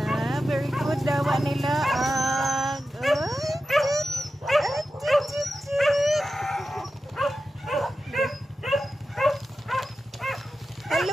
Very good dawa nila. Hello,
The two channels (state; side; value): normal; both; correlation 0.92